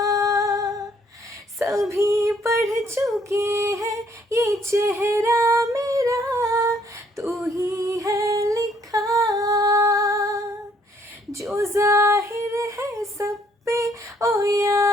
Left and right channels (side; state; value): both; normal; correlation 0.65